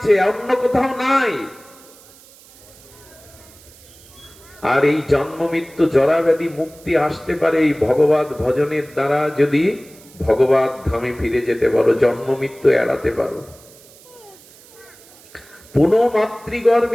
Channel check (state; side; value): noise; right; hiss, 24 dB below the sound